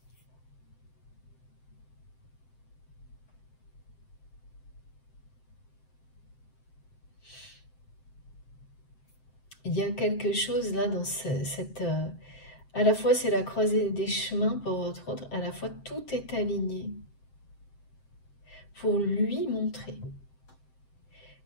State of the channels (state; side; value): late; right; 7.7 ms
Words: Il y a quelque chose là dans cette... à la fois, c'est la croisée des chemins pour votre autre, à la fois, tout est aligné pour lui montrer